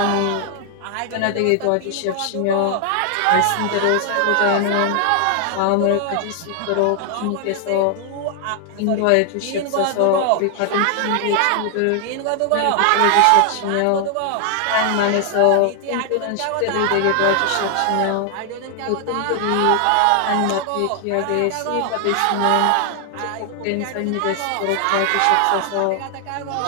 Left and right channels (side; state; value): both; different; correlation 0.00